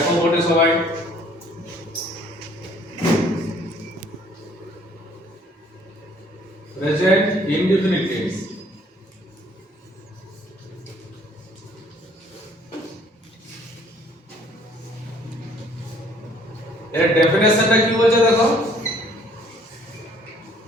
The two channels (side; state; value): both; normal; correlation 0.59